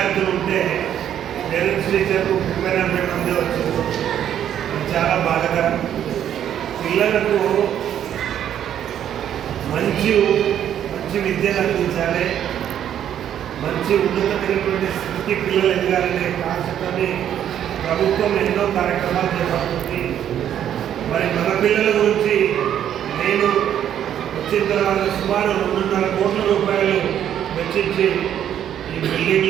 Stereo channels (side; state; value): left; quieter; 10.1 dB